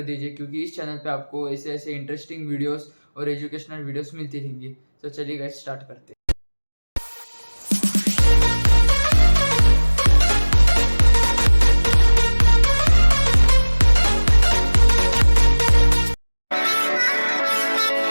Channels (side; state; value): both; inverted; correlation -1.00